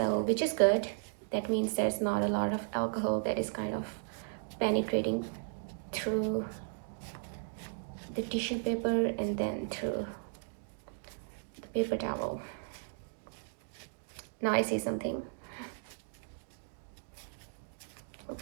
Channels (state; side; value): silent; left; digital silence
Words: which is good. That means there's not a lot of alcohol that is kind of penetrating through the tissue paper and then through the paper towel. Now I see something.